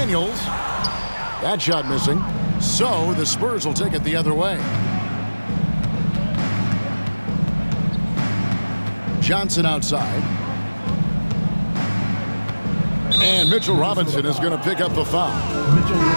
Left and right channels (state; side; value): inverted; both; correlation -1.00